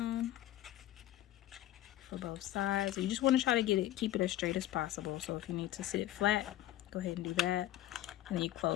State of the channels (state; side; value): quieter; right; 14.3 dB